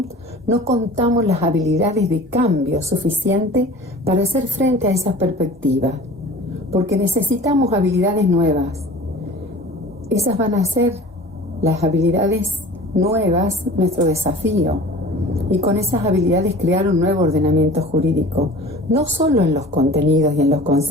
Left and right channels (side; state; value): both; normal; correlation 0.41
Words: no contamos las habilidades de cambio suficientes para hacer frente a esas perspectivas? Porque necesitamos habilidades nuevas. Esas van a ser las habilidades nuevas, nuestro desafío. Y con esas habilidades crear un nuevo ordenamiento jurídico, no solo en los contenidos y en los